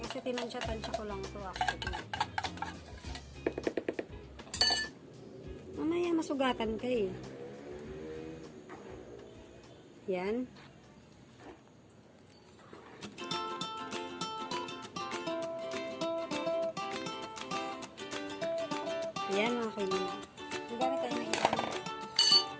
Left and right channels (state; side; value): identical; both; correlation 1.00